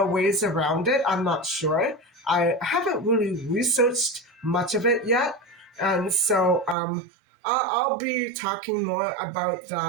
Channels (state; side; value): drops out; left; at 6.8 s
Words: ways around it. I'm not sure. I haven't really researched much of it yet. And so I'll be talking more about